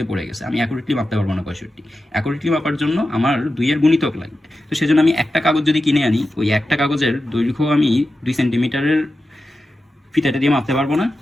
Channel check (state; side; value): normal; both; correlation 0.92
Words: পড়ে গেছে, আমি অ্যাকুরেটলি মাপতে পারবো না। 65 অ্যাকুরেটলি মাপার জন্য আমার 2-এর গুণিতক লাগবে। তো সেজন্য আমি একটা কাগজ যদি কিনে আনি, ওই একটা কাগজের দৈর্ঘ্য আমি 2 সেন্টিমিটারের ফিতাটা দিয়ে মাপতে পারবো না,